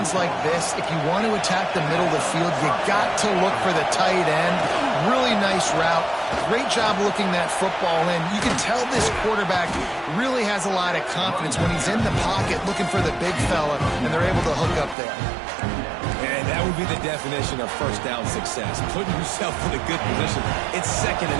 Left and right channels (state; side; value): drops out; left; at 15.0 s